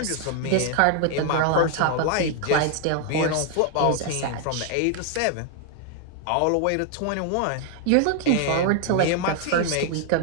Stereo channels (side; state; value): both; different; correlation 0.00